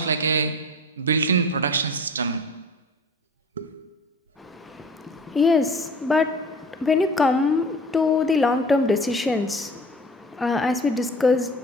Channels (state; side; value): normal; both; correlation 0.42